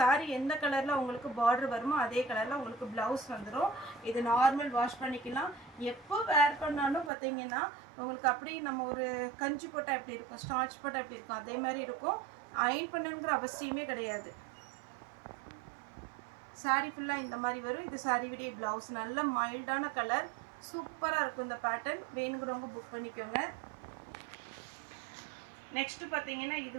எந்த கலர்ல உங்களுக்கு பார்டர் வருமோ அதே கலர்ல உங்களுக்கு பிளவுஸ் வந்துடும். இது நார்மல் வாஷ் பண்ணிக்கலாம். எப்போ வேர் பண்ணாலும் பாத்தீங்கன்னா உங்களுக்கு அப்படியே நம்ம ஒரு கஞ்சி போட்டா எப்படி இருக்கும், ஸ்டார்ச் போட்டா எப்படி இருக்கும், அதே மாதிரி இருக்கும். அயன் பண்ணணுங்கிற அவசியமே கிடையாது. சாரி ஃபுல்லா இந்த மாதிரி வரும். இது சாரியுடைய பிளவுஸ். நல்ல மைல்டான கலர், சூப்பரா இருக்கும் இந்த பேட்டர்ன். வேணுங்கிறவங்க புக் பண்ணிக்கோங்க. நெக்ஸ்ட் பாத்தீங்கன்னா இது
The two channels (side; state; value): left; drops out; at 7.1 s